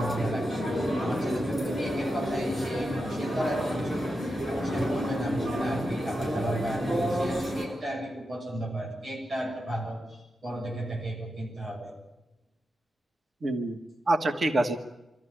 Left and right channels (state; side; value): normal; both; correlation 0.88